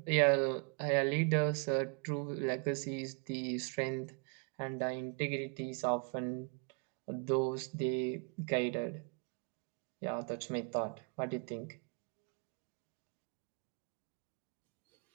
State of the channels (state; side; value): quieter; left; 37.4 dB